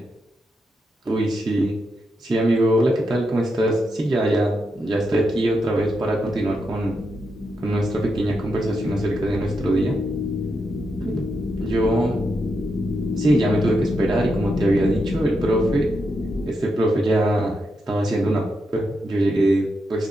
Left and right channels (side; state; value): both; normal; correlation 0.84